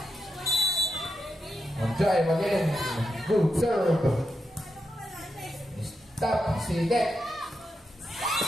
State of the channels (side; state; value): both; normal; correlation 0.85